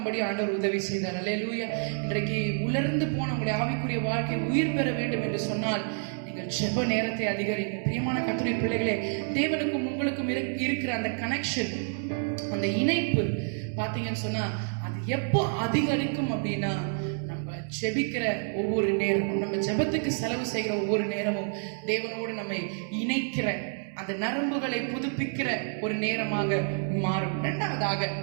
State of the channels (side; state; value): left; silent; 59 dB below the other